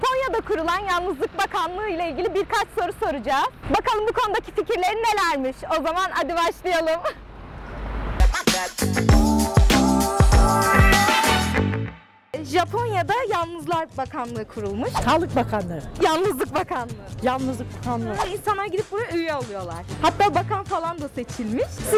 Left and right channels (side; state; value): both; identical; correlation 1.00